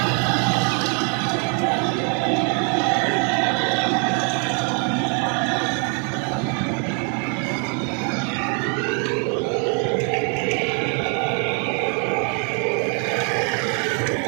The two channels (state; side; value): quieter; left; 39.0 dB